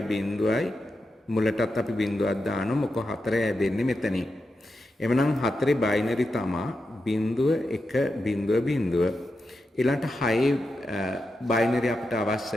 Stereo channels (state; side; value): normal; both; correlation 0.88